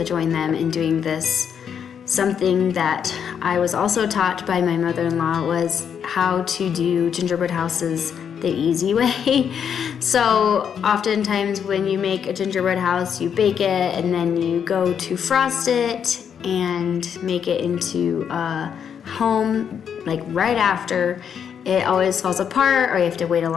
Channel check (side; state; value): right; quieter; 7.8 dB